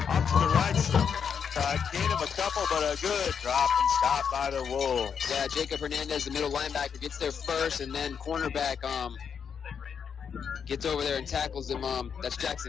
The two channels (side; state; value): right; quieter; 7.0 dB